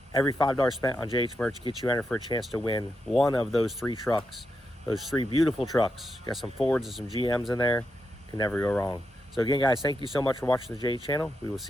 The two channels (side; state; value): both; normal; correlation 0.85